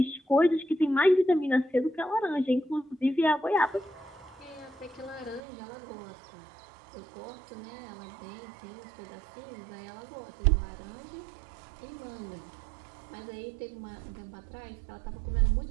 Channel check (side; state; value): left; drops out; at 5.4 s